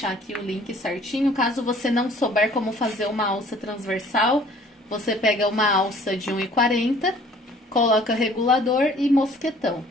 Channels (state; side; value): normal; both; correlation 0.54